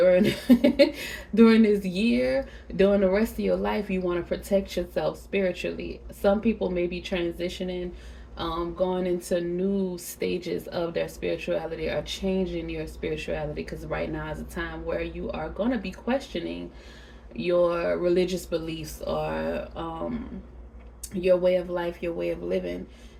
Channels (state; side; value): identical; both; correlation 1.00